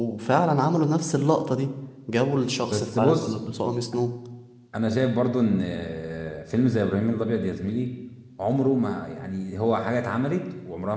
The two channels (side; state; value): both; identical; correlation 1.00